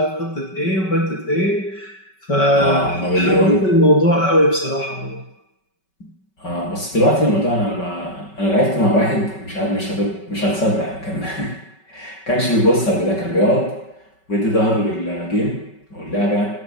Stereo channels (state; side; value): late; right; 5.3 ms